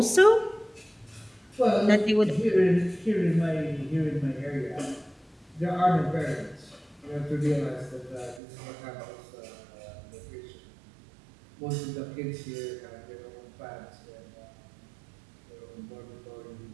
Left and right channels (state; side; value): drops out; left; at 8.4 s